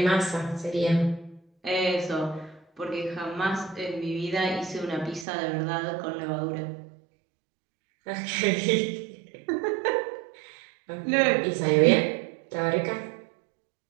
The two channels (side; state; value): left; drops out; at 5.2 s